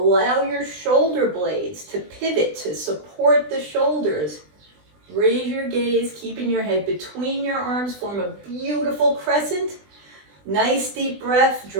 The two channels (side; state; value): left; late; 20 ms